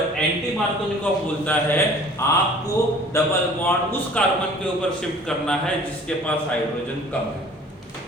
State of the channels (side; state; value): both; normal; correlation 0.49